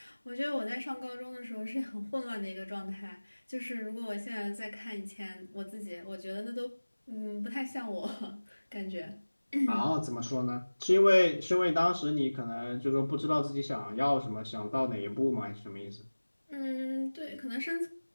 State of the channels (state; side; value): inverted; both; correlation -1.00